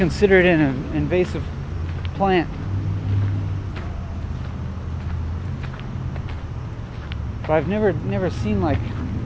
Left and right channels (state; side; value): identical; both; correlation 1.00